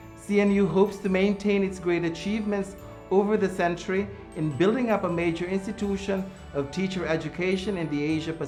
CNU hopes to maintain its great achievements over the century in building up a major institution of teacher education in the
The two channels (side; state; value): both; identical; correlation 1.00